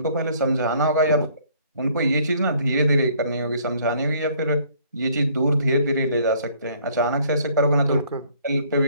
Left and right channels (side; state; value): both; inverted; correlation -0.61